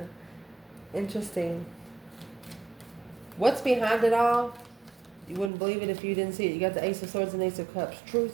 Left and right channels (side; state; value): left; drops out; at 5.5 s